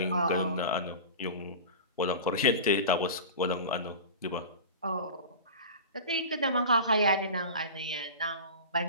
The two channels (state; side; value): inverted; both; correlation -0.32